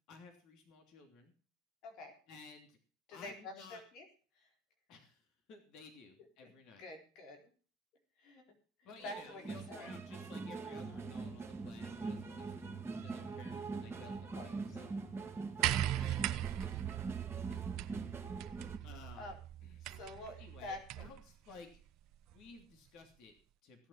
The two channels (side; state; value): left; quieter; 6.4 dB